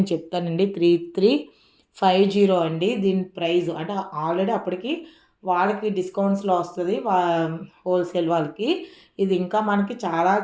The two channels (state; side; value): identical; both; correlation 1.00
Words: చెప్తానండి. 3350 అండి దీని ప్రైస్. అంటే ఆల్రెడీ అప్పటికి వాళ్ళకి డిస్కౌంట్స్లో వస్తుంది, హోల్సేల్ వాళ్ళకి. ఇది ఇంకా మనకి చాలా